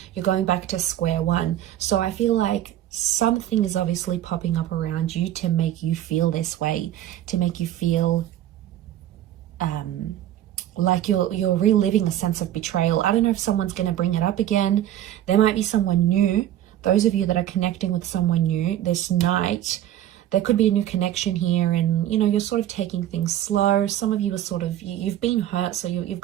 you're going back to square one. So I feel like something is obviously popping up around you to make you feel this way, to make you feel like you're reliving a sense of betrayal. I don't know if someone's going to bring it up again. There might be someone new. Those of you that are connecting with someone new this night, there could be a new connection here and, you know, you're sort of taking things slow. Some of you are sort of, you've been hurt, so you've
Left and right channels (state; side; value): quieter; left; 12.2 dB